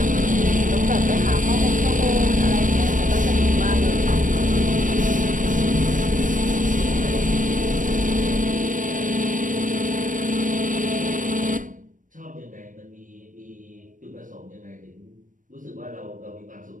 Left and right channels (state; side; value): late; left; 0.38 ms